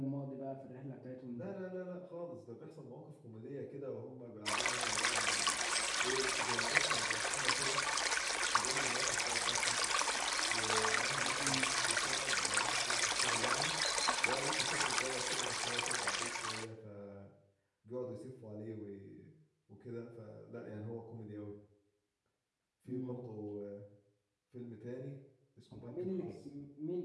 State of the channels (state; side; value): identical; both; correlation 1.00